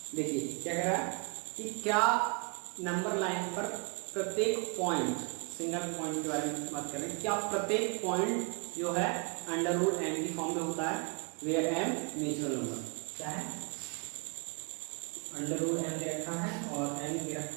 देखिए क्या कह रहा है कि क्या नंबर लाइन पर प्रत्येक पॉइंट, सिंगल पॉइंट के बारे में बात कर रहे हैं, क्या प्रत्येक पॉइंट जो है अंडर रूट एम की फॉर्म में होता है, वेयर एम नेचुरल नंबर। क्या है? अंडर रूट एम दे रखा है और एम दे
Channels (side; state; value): left; quieter; 33.5 dB